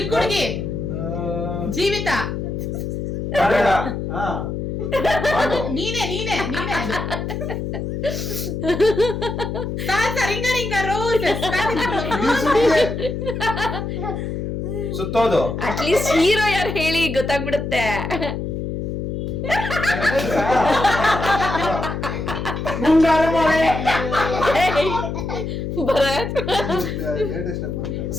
ಹುಡುಗಿ. ಜೀವಿತ. ಕನ್ನಡ. ನೀನೇ ಅದು. Ring a ring a rose. ಸುತ್ತೋದು. ಅಟ್ಲೀಸ್ಟ್ ಹೀರೋ ಯಾರು ಹೇಳಿ ಗೊತ್ತಾಗ್ಬಿಡುತ್ತೆ. ಮುಂಗಾರು ಮಳೆ. ಭರತ್,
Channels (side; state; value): left; noise; hum, 4 dB below the sound